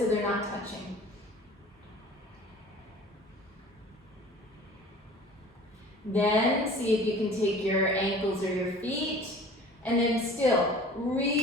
they're not touching. Then see if you can take your ankles or your feet, and then still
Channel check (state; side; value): normal; both; correlation 0.45